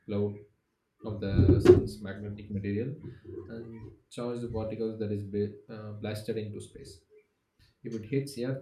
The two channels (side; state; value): both; identical; correlation 1.00